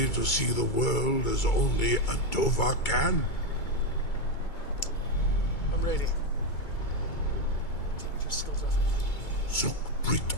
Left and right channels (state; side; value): late; right; 2.3 ms